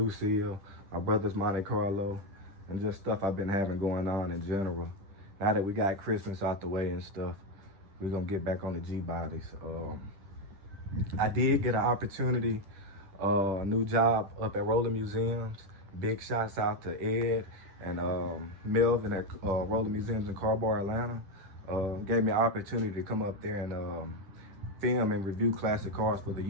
my brother's Monte Carlo, and just stuff I've been having going on in general. Now that we got Christmas out the way and stuff, we're gonna get back on the Gbodies. I did get an opportunity, a new job up at Rolling Museums. Big shots out to Ed and Melvin at Rolling Museums in Carbar, Atlanta. Gave me an opportunity to come up there and film and review classic cars for the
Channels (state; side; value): late; left; 10 ms